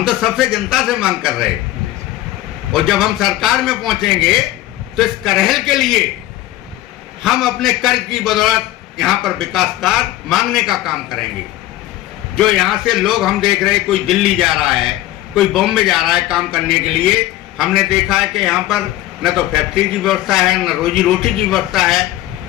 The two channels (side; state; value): right; quieter; 15.5 dB